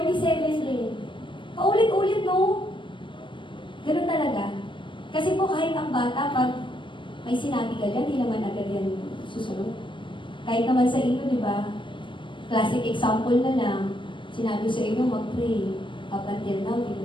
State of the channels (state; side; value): late; right; 0.24 ms